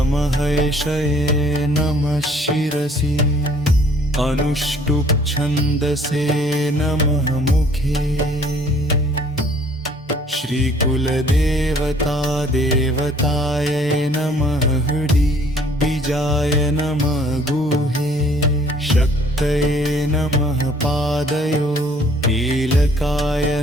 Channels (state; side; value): normal; both; correlation 0.58